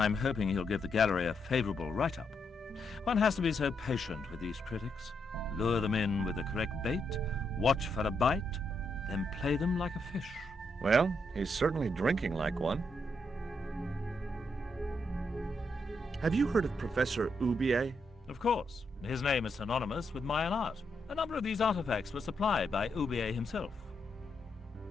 hoping he'll give the gallery a favorable write-up. One has to be so patient with these critics. Lure them in with the correct bait, watch for a bite, then play them like a fish. Well, he's certainly drinking like one. Have you heard of Professor Oubier? Of course. His name is synonymous with Mayan art. A number of these artifacts were supplied by Oubier himself.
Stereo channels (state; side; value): normal; both; correlation 0.80